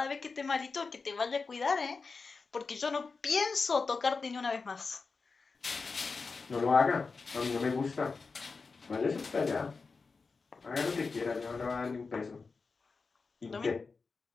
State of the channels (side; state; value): right; quieter; 4.5 dB